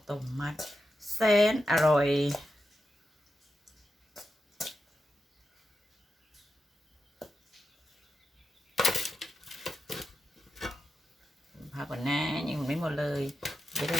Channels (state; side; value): normal; both; correlation 0.88